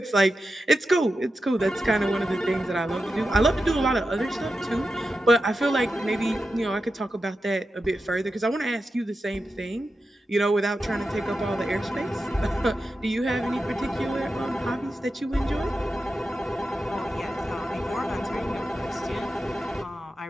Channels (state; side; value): normal; both; correlation 0.90